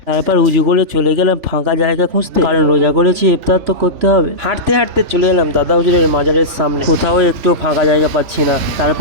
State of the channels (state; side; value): late; left; 3.4 ms